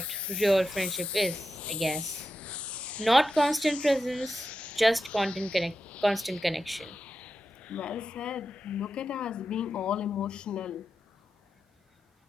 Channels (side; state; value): both; normal; correlation 0.89